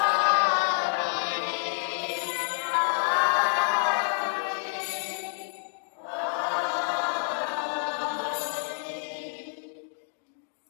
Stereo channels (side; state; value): right; silent; digital silence